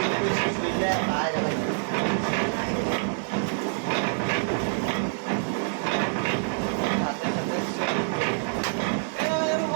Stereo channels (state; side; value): silent; left; digital silence